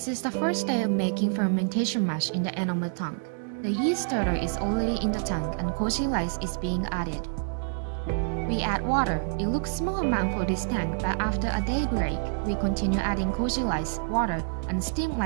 is the first day of making fermentation mash in the enamel tank. The yeast starter is already in the tank and koji rice is being added. We add water. It looks small amount for this tank, but after a day break, we continue adding koji rice, water, and steam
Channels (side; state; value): left; silent; digital silence